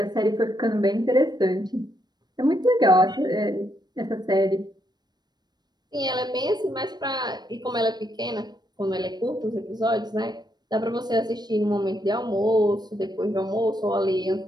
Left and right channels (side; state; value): left; late; 0.20 ms